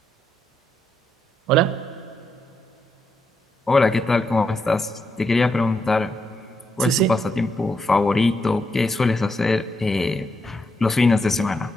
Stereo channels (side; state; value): both; normal; correlation 0.81